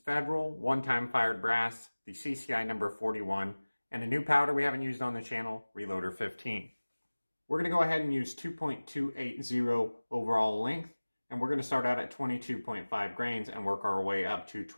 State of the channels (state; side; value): inverted; both; correlation -1.00